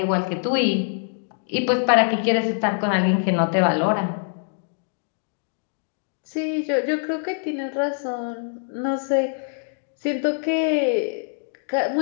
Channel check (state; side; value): silent; right; digital silence